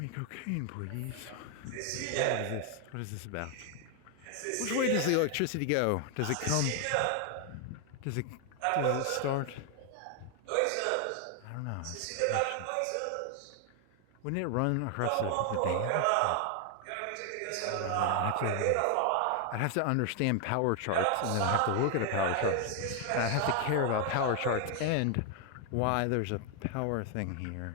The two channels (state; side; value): different; both; correlation 0.00